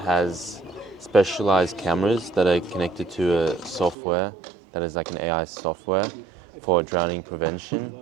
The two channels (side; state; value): left; drops out; at 4.0 s